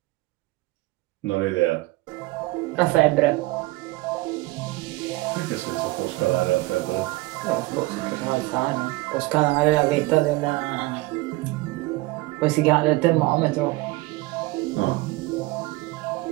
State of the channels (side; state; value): left; quieter; 21.0 dB